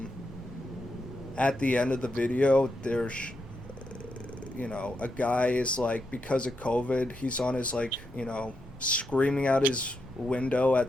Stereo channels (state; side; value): normal; both; correlation 0.83